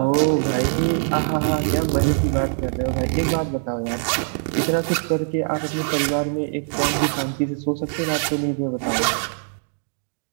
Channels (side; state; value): left; silent; digital silence